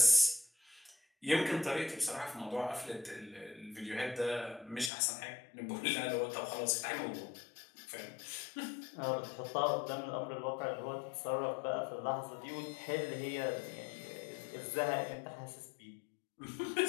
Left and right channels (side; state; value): right; drops out; at 4.9 s